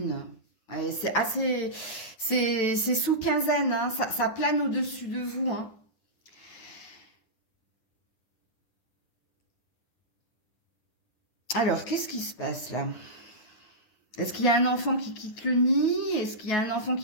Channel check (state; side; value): late; right; 9.8 ms